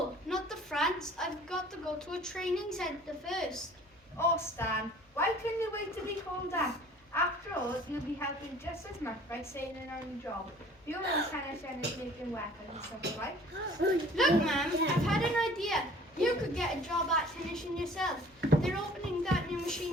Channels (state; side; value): normal; both; correlation 0.50